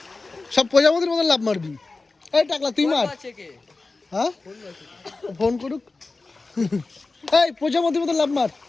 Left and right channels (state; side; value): quieter; right; 3.6 dB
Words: সব প্রজাপতির মতন লাভ মারবি। এই টাকলা তুই মার। হ্যাঁ ফোন করুক। এই প্রজাপতির মতন লাভ মার।